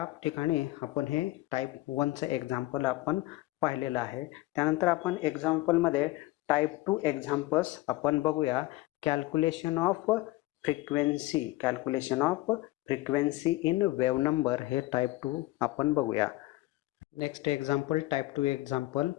ठिकाणी आपण हे टाईप 1चं एक्झाम्पल आपण पाहिलेलं आहे. त्यानंतर आपण एक्झाम्पलमध्ये टाईप 2 एक्झाम्पल्स आपण बघूया. Calculation of frequency in wave number हे टाईप 2 आपण बघूया. Next example type 2 example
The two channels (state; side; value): quieter; right; 18.7 dB